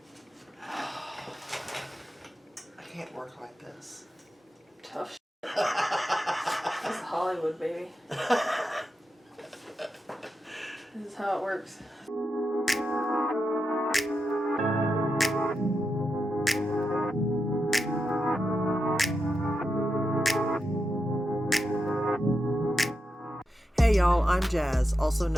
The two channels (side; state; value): both; normal; correlation 0.87